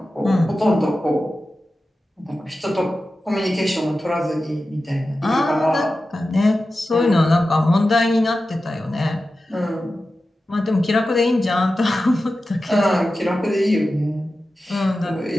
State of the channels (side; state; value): both; normal; correlation 0.93